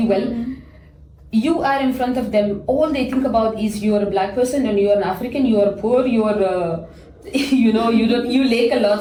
well. You are in front of them, all they think about is you're a black person and you're an African, you're poor, you're you know, you lack a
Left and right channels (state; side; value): identical; both; correlation 1.00